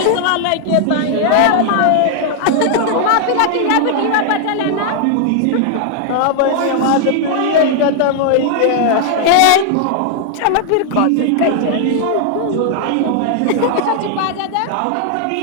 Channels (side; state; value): both; different; correlation 0.00